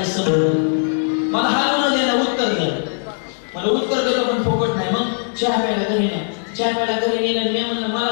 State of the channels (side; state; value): right; silent; digital silence